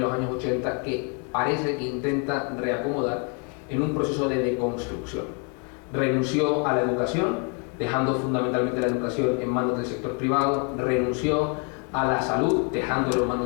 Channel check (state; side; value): quieter; right; 37.4 dB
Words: años 80 que parece que intenta reacomodar en un proceso de deconstrucción. Renunció a la educación, dejando fundamentalmente la educación en manos del sector privado, renunció a la salud, dejándolo en